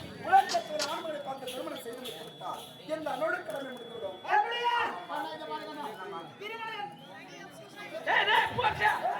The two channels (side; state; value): both; identical; correlation 1.00